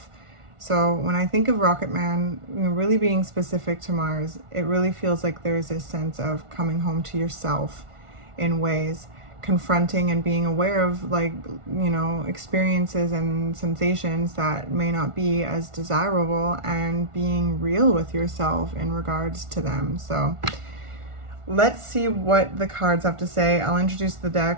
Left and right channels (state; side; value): late; left; 1.4 ms